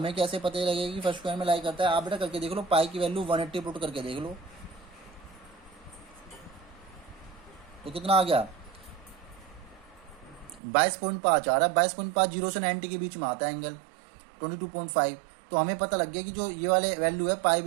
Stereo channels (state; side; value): drops out; left; at 10.6 s